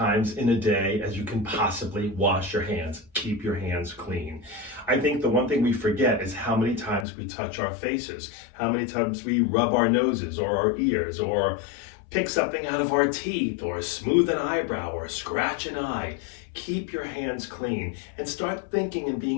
in a day as you can possibly wash your hands. Keep your hands clean. I think the one thing we forget is how many times we touch our faces, how many times we rub our noses or our ears, or pick something out of our teeth, or smooth an eyebrow, or scratch an eye. Keep your hands clean and start thinking and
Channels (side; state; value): right; drops out; at 7.1 s